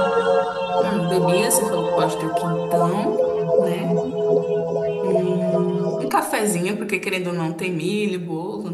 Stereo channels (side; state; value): both; identical; correlation 1.00